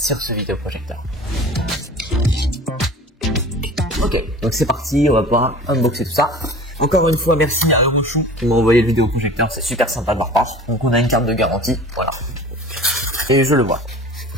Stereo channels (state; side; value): normal; both; correlation 0.40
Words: ce vidéoprojecteur. Ok, donc c'est parti, on va pouvoir unboxer tout ça. Encore une fois, merci à Orochou qui m'a envoyé le vidéoprojecteur, c'est super sympa de leur part. Donc on a une carte de garantie, voilà. Et je le vois.